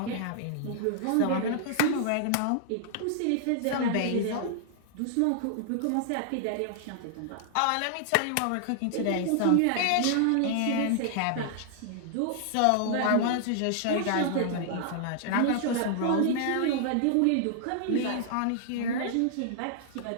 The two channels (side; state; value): both; different; correlation -0.01